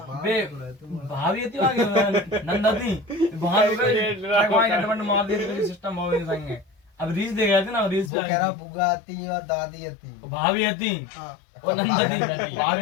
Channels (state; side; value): drops out; right; at 8.1 s